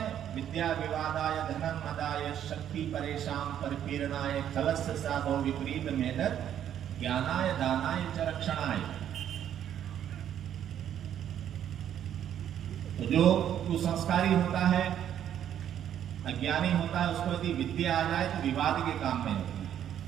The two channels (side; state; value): left; quieter; 10.2 dB